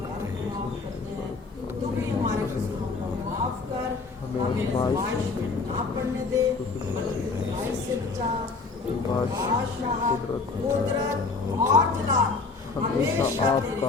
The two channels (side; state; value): right; quieter; 4.1 dB